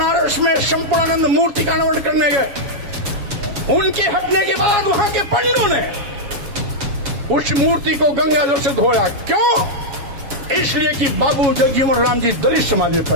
में संपूर्णानंद मूर्ति का अनावरण करने गए। उनके हटने के बाद वहां के पंडितों ने उस मूर्ति को गंगा जल से धोया। क्यों? इसलिए कि बाबू जगजीवन राम जी दलित समाज में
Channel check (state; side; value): late; left; 7.3 ms